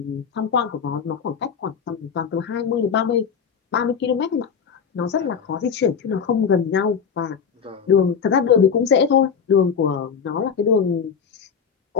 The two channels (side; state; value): right; quieter; 6.6 dB